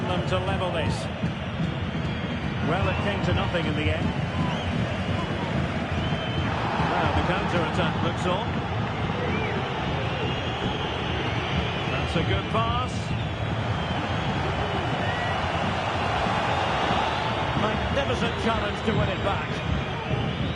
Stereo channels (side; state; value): both; identical; correlation 1.00